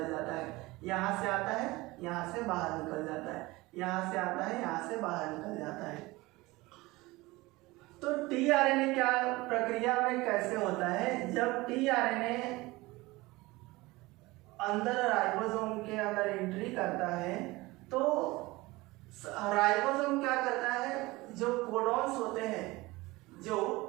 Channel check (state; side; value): quieter; left; 21.2 dB